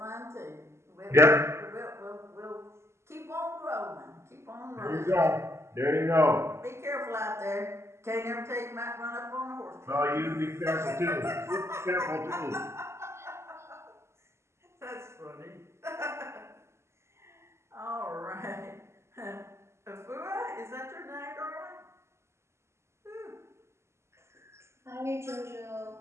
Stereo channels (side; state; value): left; late; 0.13 ms